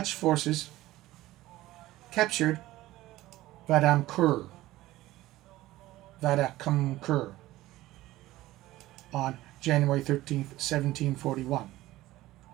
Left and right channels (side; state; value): left; quieter; 16.7 dB